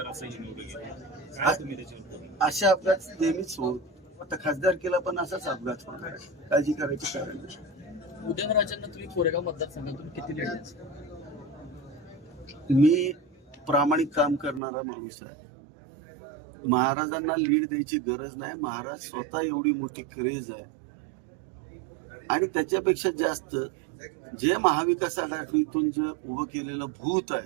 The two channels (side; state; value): left; drops out; at 14.6 s